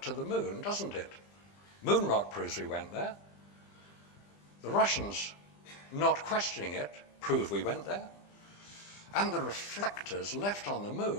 to the moon, doesn't it? Moon rock proves we went there. The Russians, not questioning it, prove we went there. And the reflectors left on the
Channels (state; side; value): late; right; 20 ms